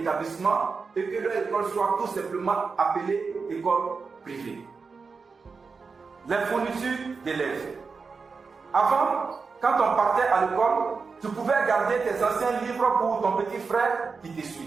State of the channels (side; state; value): left; quieter; 4.8 dB